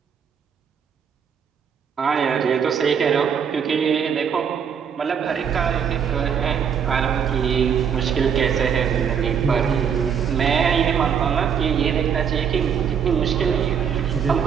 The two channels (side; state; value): left; quieter; 7.5 dB